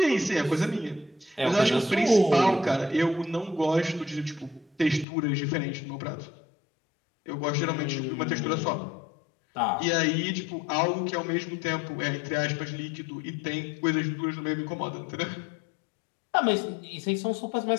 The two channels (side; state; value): right; drops out; at 5.1 s